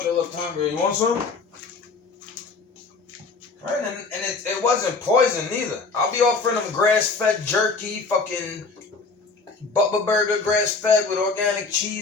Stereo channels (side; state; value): right; quieter; 4.3 dB